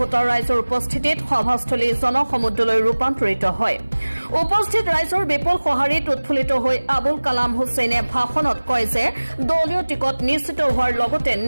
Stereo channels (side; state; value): both; inverted; correlation -1.00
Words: ৰাইজৰ উপস্থিতিত সভাস্থলী জনসমুদ্ৰলৈ ৰূপান্তৰিত হয়। উপস্থিত ৰাইজৰ বিপুল সঁহাৰিত উৎফুল্লিত হৈ আবুল কালাম হুছেইনে ভাষণত কয় যে দলীয় টিকট নিশ্চিত হোৱাৰ লগতে